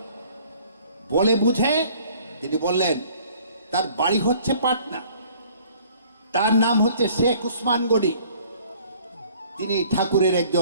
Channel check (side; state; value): both; inverted; correlation -0.55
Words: বলে বুঝে তিনি বললেন, তার বাড়ি হচ্ছে পাটনা, তার নাম হচ্ছে শেখ উসমান গনি, তিনি ঠাকুরের